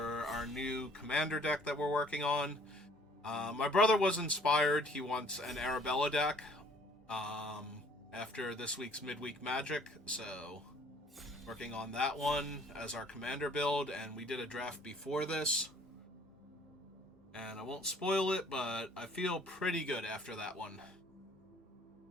our new commander deck that we're working on. My brother was inspired. He wants an Arabella deck after this week's midweek magic, so working on that one as our commander build, and we did a draft before this. And I won't spoil it, but I feel pretty good after that one.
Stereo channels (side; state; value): both; normal; correlation 0.56